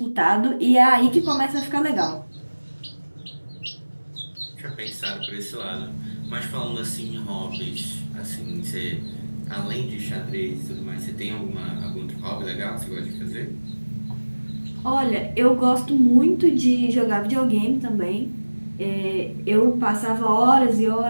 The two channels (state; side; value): inverted; both; correlation -1.00